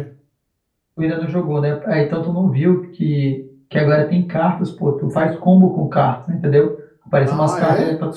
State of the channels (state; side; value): identical; both; correlation 1.00